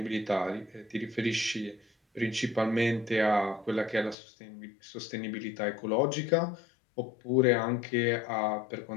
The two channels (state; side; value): drops out; right; at 4.2 s